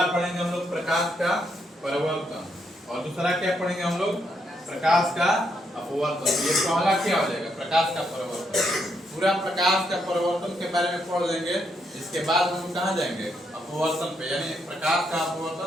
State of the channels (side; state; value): both; normal; correlation 0.77